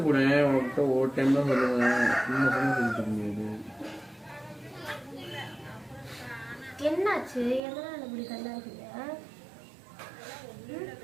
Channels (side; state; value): left; drops out; at 7.6 s